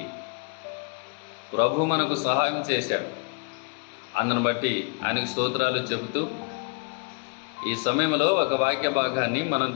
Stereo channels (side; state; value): right; quieter; 37.2 dB